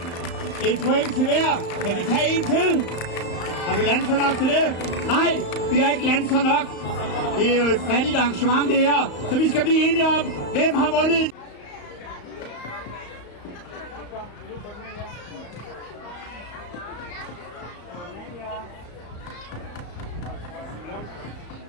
Et point til hver. Kan vi tage en til? Har vi landet så nok til det? Nej, vi har ikke landet så nok. Det er jo et fattigt arrangement det her. Så vi skal blive enige om, hvem har vundet. Ja.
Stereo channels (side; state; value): right; late; 35 ms